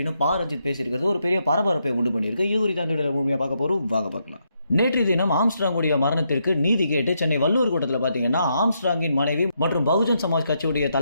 ரஞ்சித் பேசியிருக்கிறது ஒரு பெரிய பரபரப்பை உண்டு பண்ணியிருக்கு. இது குறித்து அந்த முழுமையாக பார்க்க போறோம், வாங்க பார்க்கலாம். நேற்றைய தினம் ஆம்ஸ்ட்ராங்குடைய மரணத்திற்கு நீதி கேட்டு சென்னை வள்ளுவர் கூட்டத்தில் பார்த்தீங்கன்னா ஆம்ஸ்ட்ராங்கின் மனைவி மற்றும் பகுஜன் சமாஜ் கட்சியுடைய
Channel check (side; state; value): both; inverted; correlation -0.80